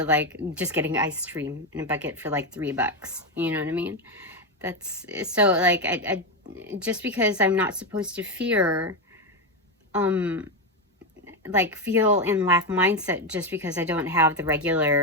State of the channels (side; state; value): both; normal; correlation 0.10